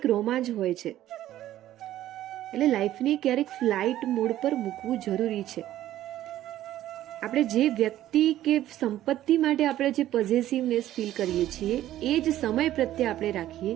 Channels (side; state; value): left; quieter; 13.3 dB